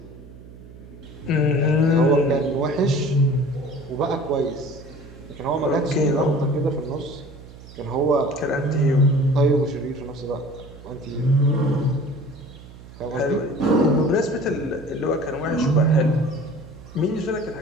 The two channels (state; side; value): noise; right; hum, 18 dB below the sound